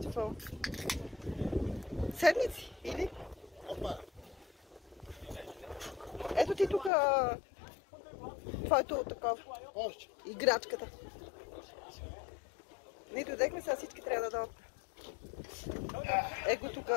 Седмици, или? Ето ти тук твоето такова. Играчката. Ние дойдехме, сега всички трябва да дойдат. Его тук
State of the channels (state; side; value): drops out; right; at 6.9 s